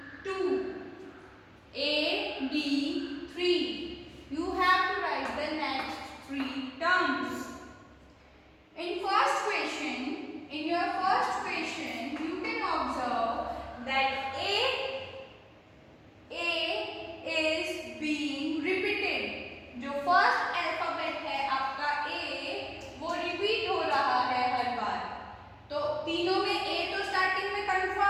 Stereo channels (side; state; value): both; identical; correlation 1.00